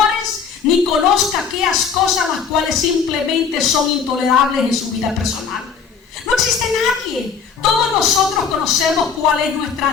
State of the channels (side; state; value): right; quieter; 6.2 dB